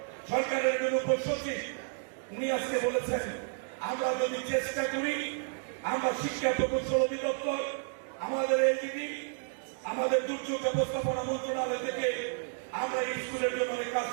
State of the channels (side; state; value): left; silent; 57 dB below the other